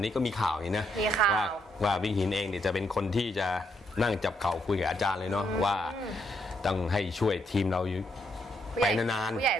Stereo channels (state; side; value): normal; both; correlation 0.76